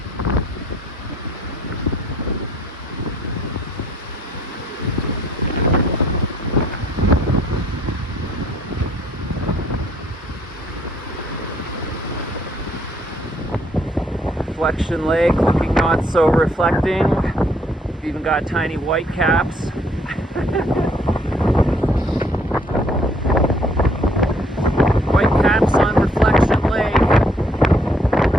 Reflection Lake, looking not so reflecting. Even got tiny white caps. White caps on Reflection Lake.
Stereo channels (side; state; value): both; normal; correlation 0.65